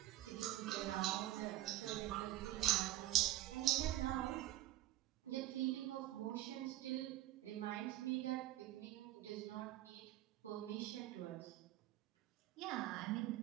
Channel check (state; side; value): quieter; left; 14.9 dB